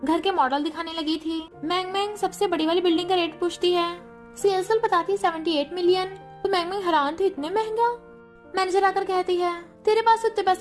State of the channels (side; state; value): both; identical; correlation 1.00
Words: घर के मॉडल दिखाने लगी थी। मैंगमिंग सबसे बड़ी वाली बिल्डिंग का रेट पूछती है। सेल्स गर्ल बताती है 78 मिलियन। तो मैंगमिंग हैरान थी इतने महंगा। मैनेजर आकर कहती है तेरे पास इतने